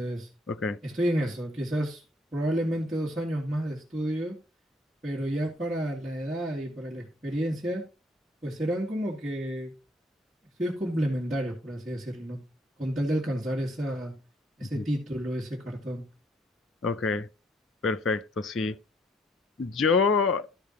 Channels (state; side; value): normal; both; correlation 0.66